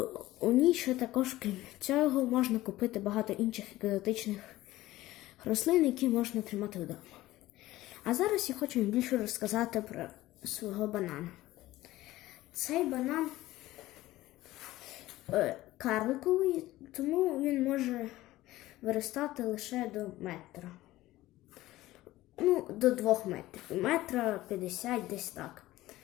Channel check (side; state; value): right; quieter; 16.7 dB